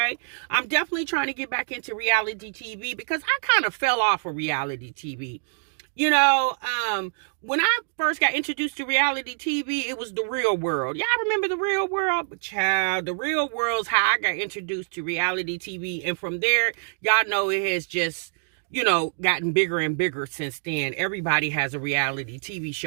I'm definitely trying to get back into reality TV because I kind of fell off of reality TV. When I first got introduced to reality TV, it was The Real World. Y'all remember The Real World? But child, The Real World's how I got introduced to reality TV. And from there, y'all know it has just, gotten bigger and bigger since then. Everybody has a reality TV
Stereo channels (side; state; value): left; silent; digital silence